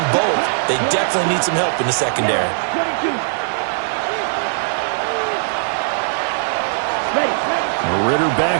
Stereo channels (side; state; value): left; silent; digital silence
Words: both. They definitely need some help in the secondary. 22. Ready. Ritter